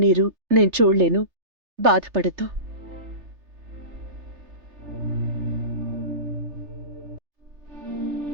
నేను చూడలేను. బాధపడద్దు.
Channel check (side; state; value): left; late; 3.3 ms